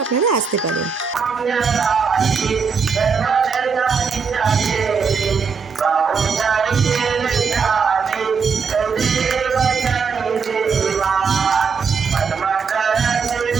আপনারা আসতে পারেন।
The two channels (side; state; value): left; quieter; 5.7 dB